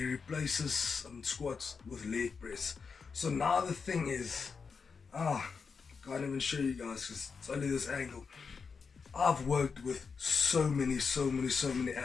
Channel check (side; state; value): right; quieter; 5.4 dB